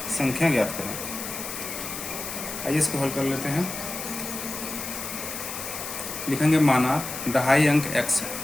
संख्या ज्ञात करें। आइए इसको हल कर लेते हैं। लिखेंगे माना दहाई अंक x है।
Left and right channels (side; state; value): left; noise; hiss, 7 dB below the sound